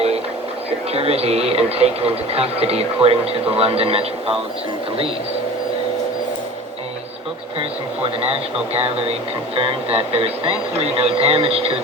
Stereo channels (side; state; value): both; normal; correlation 0.38